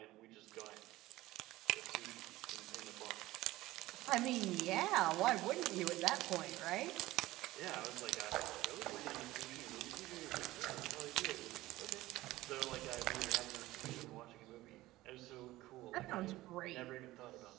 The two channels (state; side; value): quieter; left; 17.5 dB